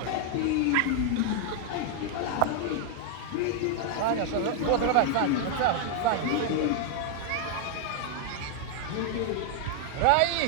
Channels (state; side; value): different; both; correlation 0.00